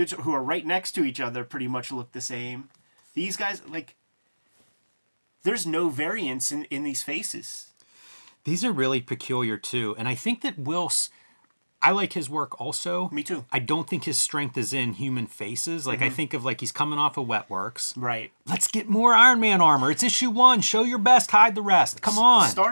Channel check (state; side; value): inverted; both; correlation -1.00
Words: who are right next to each other pretty much look the same. These guys, like, there's no variance in these faces. These are really peculiar, too. And I think that Whilce, I like his work also. Me too. I don't think his strength is in human faces. Like, I think of, like, he's coming off of Wetworks. Right. Let's get more Iron Man armor. It's issue 1. Show your best, hide the rest. Come on.